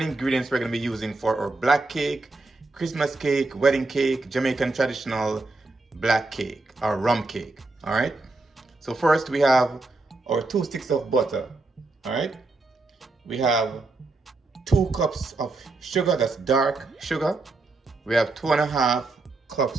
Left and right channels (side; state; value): left; quieter; 3.3 dB